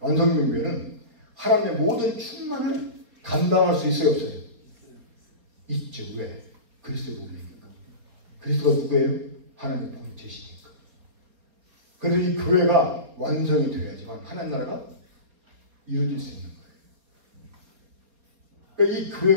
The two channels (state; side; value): late; left; 4.4 ms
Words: 하나님의 모든 충만을 감당할 수 있어요, 없어요? 있죠. 왜? 그리스도의 몸이니까. 그리스도가 누구예요? 하나님의 본체시니까. 그래서 이 교회가 완성이 되어야지만 하나님 나라가 이루어질 수 있는 거예요. 그러니까 이